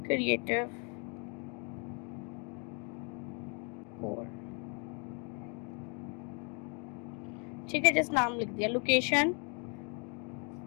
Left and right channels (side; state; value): right; quieter; 37.6 dB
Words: क्रिएटिव कोर, ठीक है, जस्ट नाम लिख दिया। लोकेशन